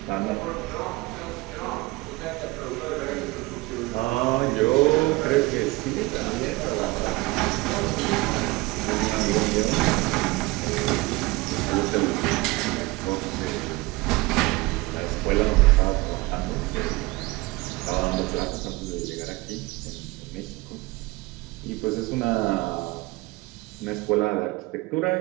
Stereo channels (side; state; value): left; quieter; 22.2 dB